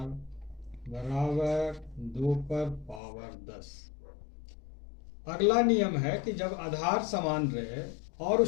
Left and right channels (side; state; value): right; drops out; at 3.0 s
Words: बराबर 2 पर पावर 10। अगला नियम है कि जब आधार समान रहे और